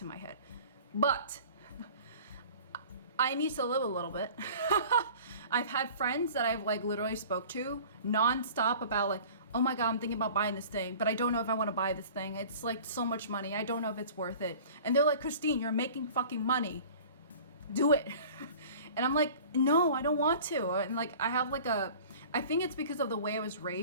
my head. But I need to live a little bit. I've had friends that I've like literally spoke to nonstop about like, oh my God, I'm thinking about buying this thing, but I don't know if I want to buy this thing. It's like so much money. I don't know if it's worth it. And they're like, Christine, you're making fucking money. Do it. And I'm like, no, I don't want to. And like, I have like I think it's because of the way I was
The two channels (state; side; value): inverted; both; correlation -0.44